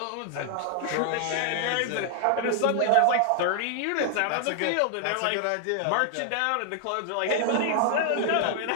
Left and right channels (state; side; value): different; both; correlation 0.00